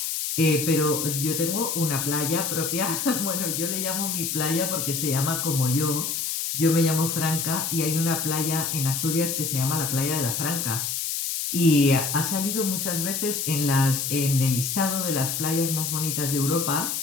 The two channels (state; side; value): noise; left; hiss, 2 dB below the sound